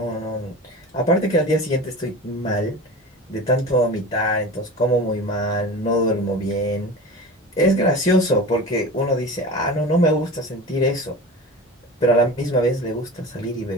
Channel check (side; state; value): both; normal; correlation 0.32